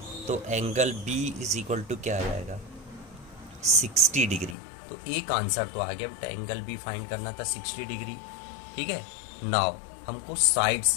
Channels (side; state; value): right; drops out; at 4.5 s